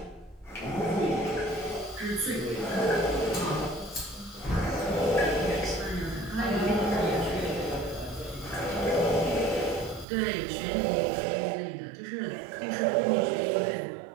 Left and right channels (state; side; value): drops out; left; at 10.1 s